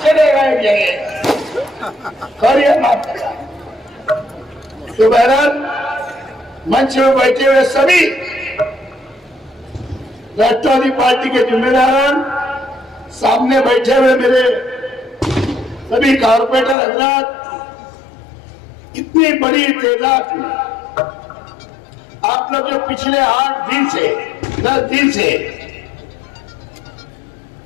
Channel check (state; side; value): drops out; right; at 16.8 s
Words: चलेगा एक जगह और माफ करना। तो बहरहाल मंच में बैठे हुए सभी राष्ट्रवादी पार्टी के जिम्मेदार, सामने बैठे हुए मेरे सभी कारपोरेटर हजरात, इतनी बड़ी तादाद में आप लोग जो पिछले 8 दिन से 10 दिन से